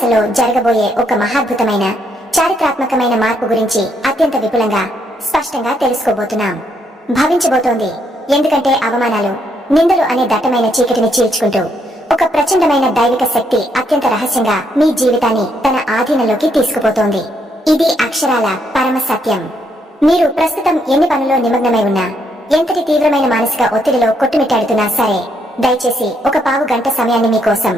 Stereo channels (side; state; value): both; normal; correlation 0.74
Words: జరగబోయే ఒక మహాద్భుతమైన చారిత్రాత్మకమైన మార్పు గురించి అత్యంత విపులంగా స్పష్టంగా తెలుసుకోబోతున్నాం. భవించబోతోంది. ఎందుకంటే అవమానాలు, నిందలు అనే దట్టమైన చీకటిని చీల్చుకుంటూ ఒక ప్రచండమైన దైవిక శక్తి అత్యంత రహస్యంగా మీ జీవితాన్ని తన ఆధీనంలోకి తీసుకుపోతోంది. ఇది అక్షరాల పరమ సత్యం. మీరు ప్రస్తుతం ఎన్ని పనుల్లో నిమగ్నమై ఉన్నా, ఎంతటి తీవ్రమైన మానసిక ఒత్తిడిలో కొట్టుమిట్టాడుతున్నా సరే, దయచేసి ఒక పావు గంట సమయాన్ని మీకోసం,